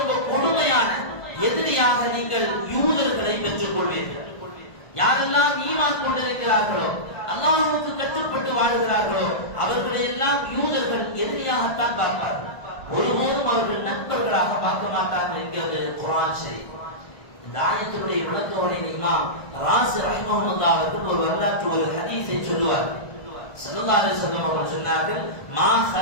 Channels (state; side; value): late; right; 1.5 ms